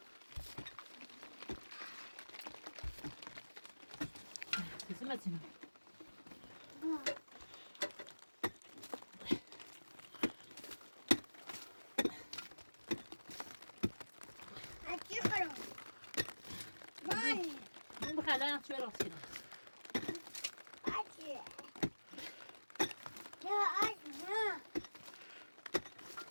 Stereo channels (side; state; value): both; inverted; correlation -1.00